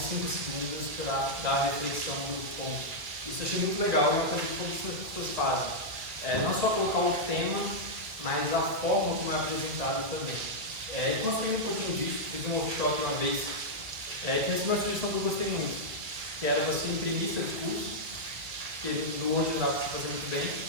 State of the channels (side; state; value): left; late; 2.0 ms